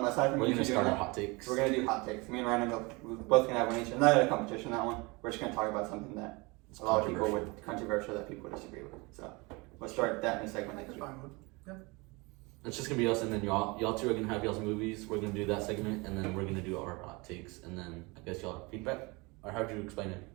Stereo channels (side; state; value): left; quieter; 26.2 dB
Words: from We're you gonna two start doing our that, hot takes. we're gonna do hot takes. Me and Ryan we're both gonna have one each. I'm not in a competition that one. We're just gonna talk about something that It's a lot of people controversial. would controversial that people would disagree with. So we'll start that in a segment next That's week. fine one. It's just gonna be us, and then y'all two are gonna have y'all's movies. We're gonna do that segment, and then we're gonna do our hot takes, and then I guess y'all have feedback. Or how'd you explain it?